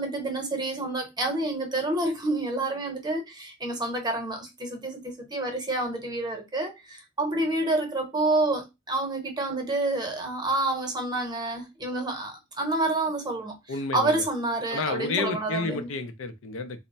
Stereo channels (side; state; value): both; normal; correlation 0.31